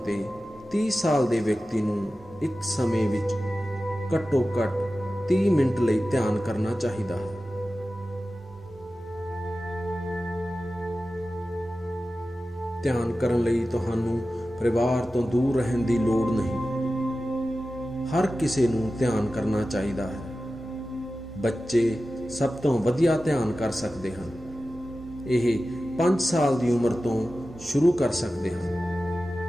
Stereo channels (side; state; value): both; normal; correlation 0.94